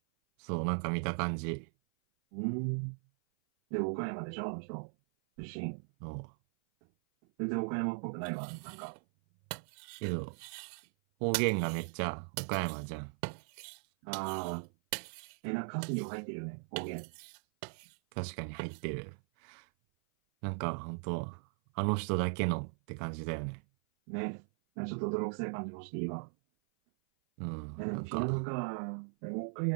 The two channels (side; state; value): left; silent; 52 dB below the other